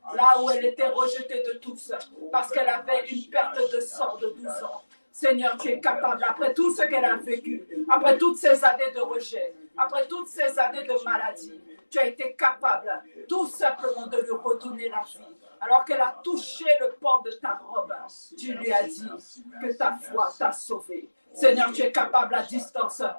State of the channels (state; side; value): inverted; both; correlation -1.00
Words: là où elle était rejetée de tous parce qu'elle avait une perte de sang de 12 ans. Seigneur, tu es capable, après tout ce qu'elle a vécu, après toutes ces années de rejet, après toutes ces années de maladie, tu as été capable tout simplement de lui redonner la vie. Alors qu'elle a touché le pan de ta robe, tu lui as dit que ta foi t'a sauvé. Seigneur, tu es capable à distance